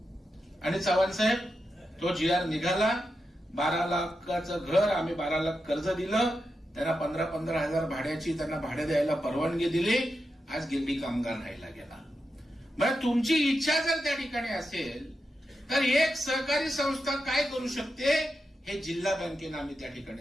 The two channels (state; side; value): normal; both; correlation 0.88